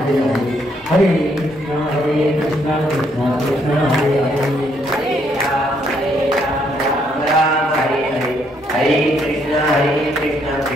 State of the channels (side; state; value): both; normal; correlation 0.71